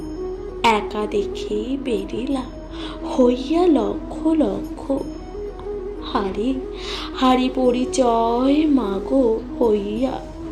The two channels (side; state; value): both; identical; correlation 1.00